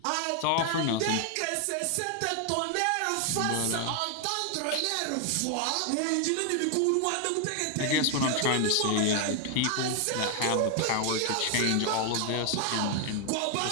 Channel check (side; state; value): both; different; correlation 0.00